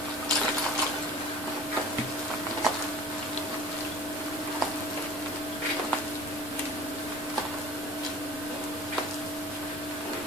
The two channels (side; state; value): both; normal; correlation 0.43